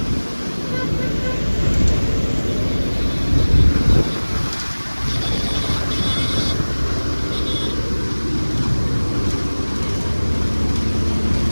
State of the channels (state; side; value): inverted; both; correlation -1.00